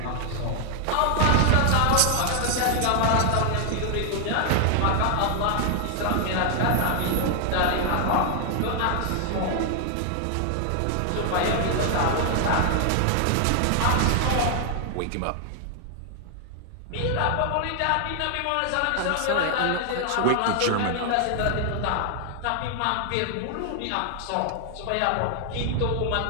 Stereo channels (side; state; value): both; different; correlation 0.00